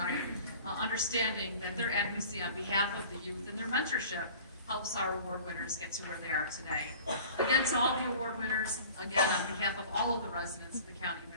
understanding that their advocacy on behalf of the youth and their mentorship helps our award winners get to where they are today. Again, to all the award winners, again, on behalf of all of the residents of the County of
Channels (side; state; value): both; inverted; correlation -0.44